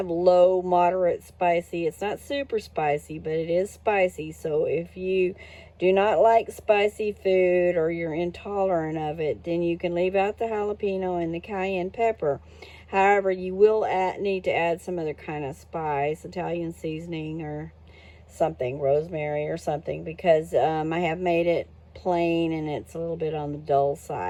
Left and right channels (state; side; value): identical; both; correlation 1.00